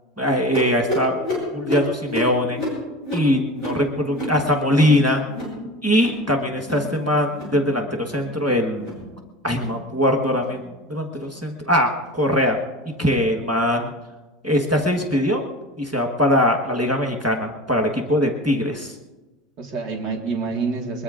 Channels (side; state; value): both; normal; correlation 0.34